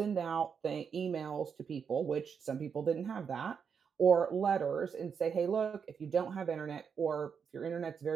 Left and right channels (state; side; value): quieter; left; 6.6 dB